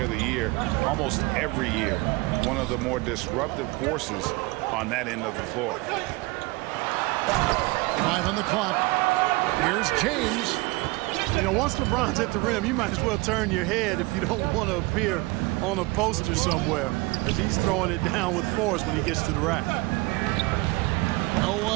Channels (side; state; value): left; quieter; 23.2 dB